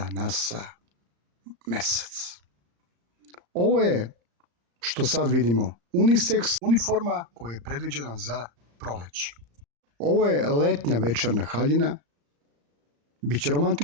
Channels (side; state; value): left; late; 35 ms